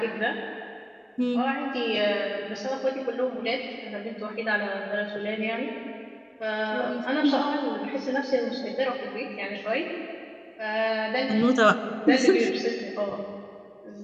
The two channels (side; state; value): both; identical; correlation 1.00